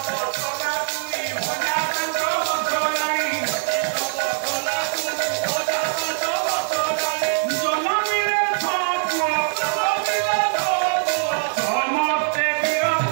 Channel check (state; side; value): silent; left; digital silence